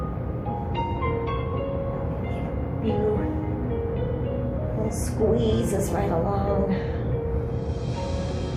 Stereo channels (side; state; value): both; identical; correlation 1.00